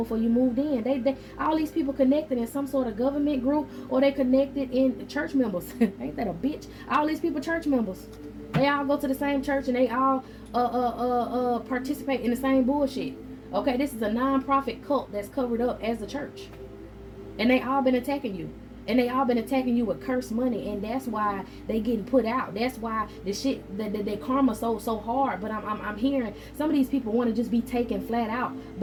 you moved in. They all these people connected in some sort of government group, or they connected in church members. Ain't that a bitch? All these people church members. They all go to the same church and they all participate in the same bullshit. Okay, this is a non-profit cult that's covered up as a church. And they all been attacking you. And they all been attacking you with cursed money. And that's why they getting put out. That's why the shit, the karma so hard. But I'm hearing some of these people want to just be taken flat out.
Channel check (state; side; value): identical; both; correlation 1.00